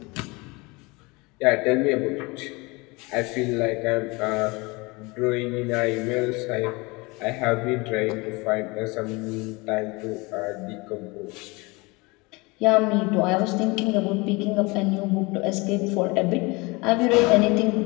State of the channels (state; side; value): quieter; right; 25.6 dB